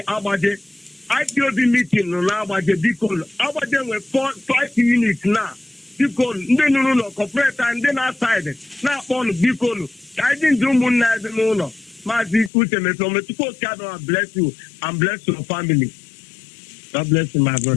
Abaje, IPOB meeting on Abaje, Bicol. Abaje were 5 units now. Bicol, no, corporate and then outside. Now on Bicol. I didn't do Muna, no. Mazi, Uche, Mefor, God bless you and bless your family. God bless you, my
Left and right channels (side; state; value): right; drops out; at 12.5 s